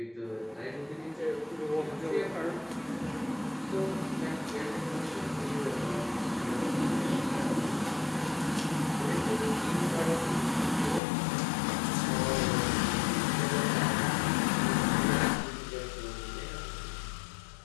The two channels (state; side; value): drops out; right; at 11.0 s